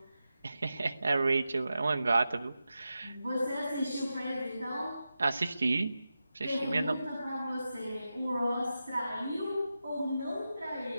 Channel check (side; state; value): both; inverted; correlation -0.91